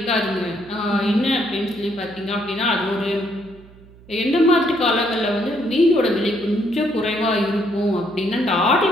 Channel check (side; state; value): right; noise; hum, 23 dB below the sound